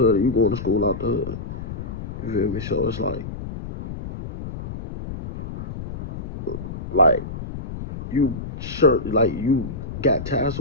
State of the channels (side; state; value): left; noise; rumble, 8 dB below the sound